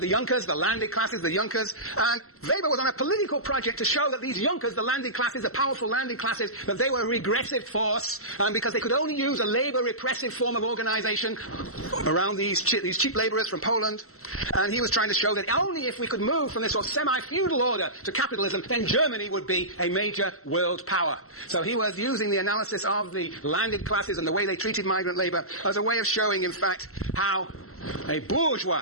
the Junkers, the landed classes, the Junkers, and Weber was on a political project to show that these Junkers, the landed classes, the powerful landed classes, that they were a regressive force, because they could only use a labor repressive form of organization around these cheap laborers from Poland. And he was trying to show that only if we could move from this sort of semi-feudal order to capitalism, then Germany would be a major world power. So he was using the analysis of the landed classes and the way they treated migrant labor as a way of showing, in fact, how a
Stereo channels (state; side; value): late; right; 0.63 ms